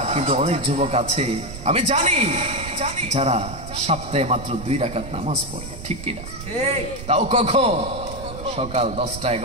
কিন্তু অনেক যুবক আছে আমি জানি যারা সপ্তাহে মাত্র 2 রাকাত নামাজ পড়ে, ঠিক কিনা? তাও কখন? সকাল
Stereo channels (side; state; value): right; noise; rumble, 11 dB below the sound